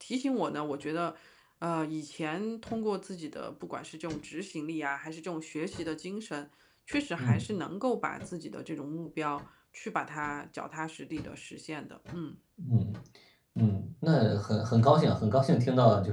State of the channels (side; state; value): both; identical; correlation 1.00